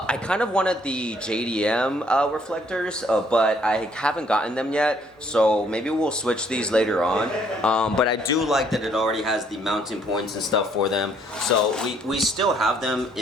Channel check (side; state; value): both; normal; correlation 0.65